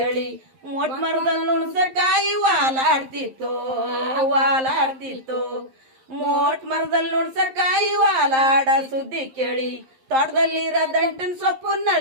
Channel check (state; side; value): late; left; 11 ms